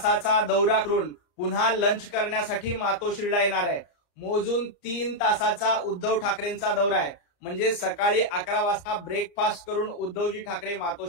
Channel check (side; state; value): right; late; 34 ms